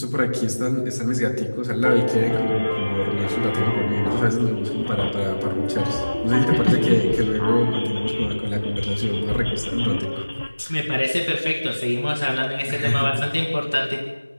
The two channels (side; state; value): both; inverted; correlation -1.00